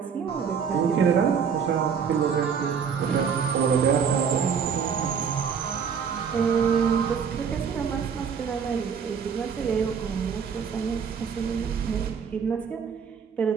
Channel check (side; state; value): left; quieter; 6.8 dB